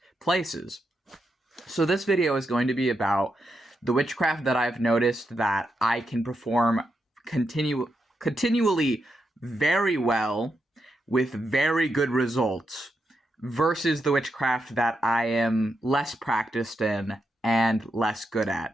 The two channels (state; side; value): normal; both; correlation 0.84